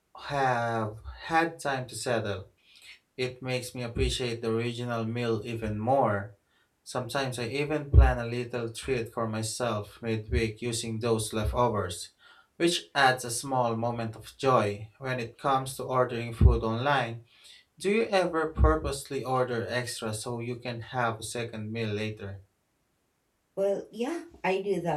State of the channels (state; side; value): identical; both; correlation 1.00